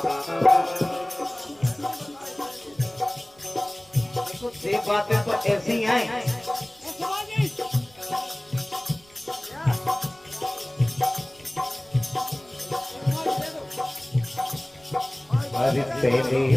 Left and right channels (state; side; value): noise; right; rumble, 28 dB below the sound